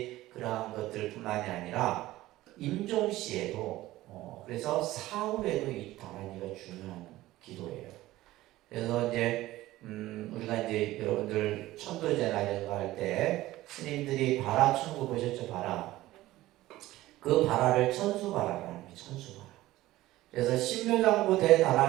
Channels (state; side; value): quieter; left; 16.5 dB